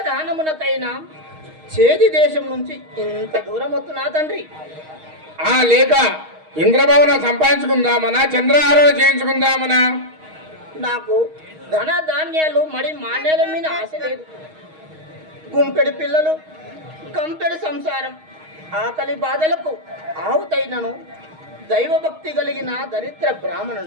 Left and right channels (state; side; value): late; left; 6.4 ms